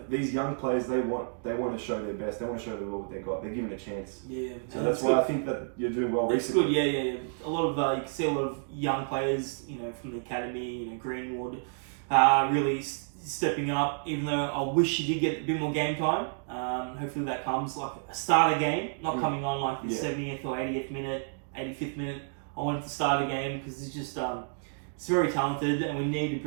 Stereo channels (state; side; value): silent; left; digital silence